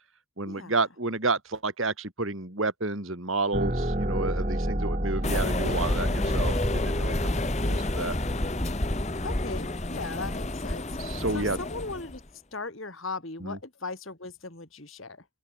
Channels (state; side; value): normal; both; correlation 0.38